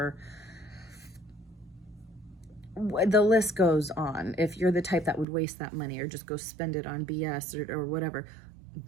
the list goes on. If you're the type that would waste that money or just go spend it on BS or whatever,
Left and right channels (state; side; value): drops out; left; at 5.2 s